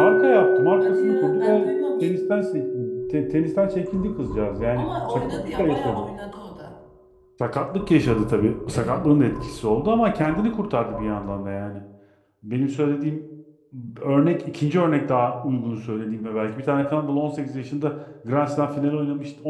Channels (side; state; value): both; identical; correlation 1.00